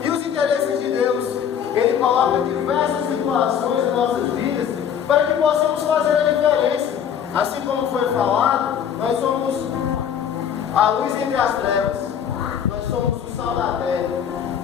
E os interesses de Deus, Ele coloca diversas situações em nossas vidas para que possamos fazer a diferença. Assim como foi falado, nós somos a luz entre as trevas. Nós somos o sal da terra.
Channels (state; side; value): quieter; right; 8.5 dB